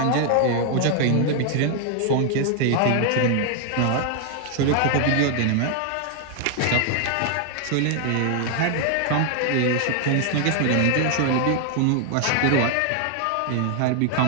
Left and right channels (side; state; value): both; different; correlation 0.00